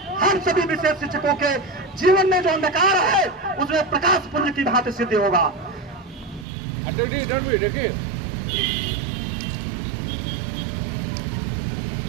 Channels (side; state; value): left; drops out; at 6.5 s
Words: हम सभी विशेष शिक्षकों के जीवन में जो अंधकार है उसमें प्रकाश पुंज की भांति सिद्ध होगा।